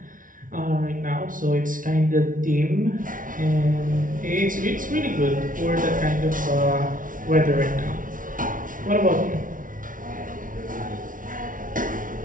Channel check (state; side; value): late; left; 0.39 ms